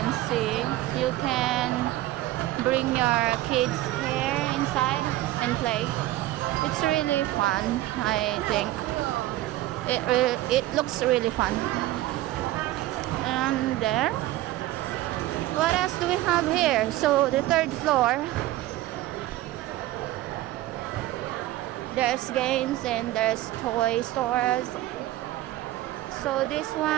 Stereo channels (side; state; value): left; quieter; 16.1 dB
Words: see, you can bring your kids here inside and play. It's really fun. I think it looks really fun. And there, what else do we have here? So the third floor, there's games and there's toy stores. So this